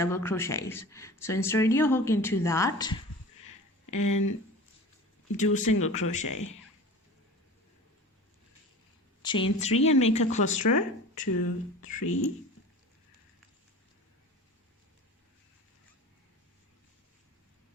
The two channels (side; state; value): both; normal; correlation 0.38